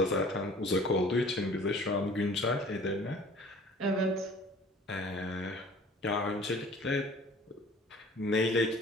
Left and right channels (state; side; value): normal; both; correlation 0.49